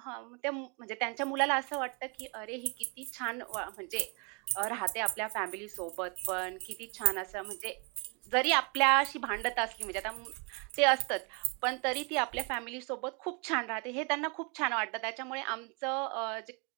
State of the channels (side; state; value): left; quieter; 33.4 dB